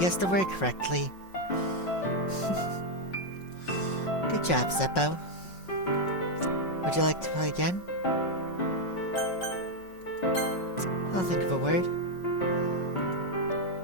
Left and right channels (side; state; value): right; late; 5.5 ms